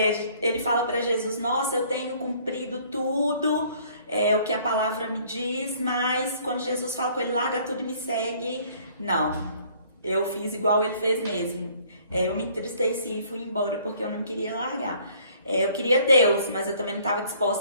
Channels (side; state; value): both; inverted; correlation -0.58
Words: ele fala para Jesus: nossa, eu tenho cumprido tudo, o que a palavra me diz, mas quando Jesus fala com ele, larga tudo e me segue, não, eu fiz igual ele fez mesmo. Eu me entristeci e fui embora porque eu não queria largar. Eu queria Deus, mas eu também não estava